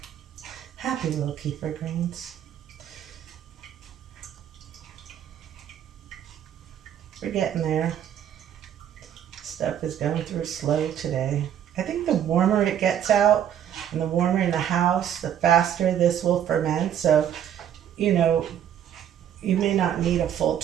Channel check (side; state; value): left; quieter; 9.9 dB